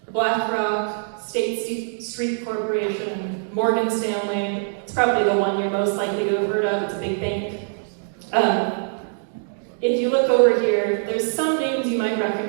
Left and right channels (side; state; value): left; silent; digital silence